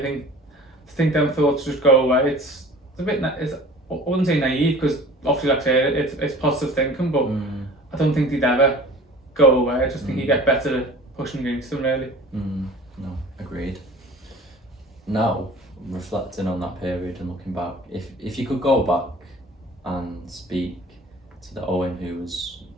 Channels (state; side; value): normal; both; correlation 0.44